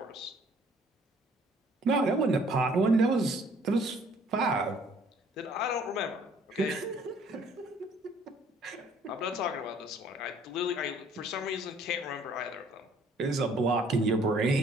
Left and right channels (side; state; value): both; normal; correlation 0.59